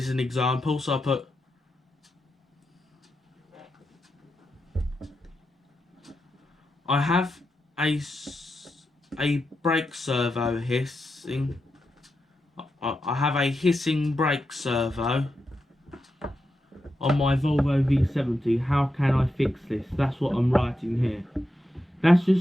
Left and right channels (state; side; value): normal; both; correlation 0.87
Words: an example. So I put I have a brake servo hissing. I have a hissing brake servo on my Volvo V70. How can I fix this? That's what I'm writing here. That's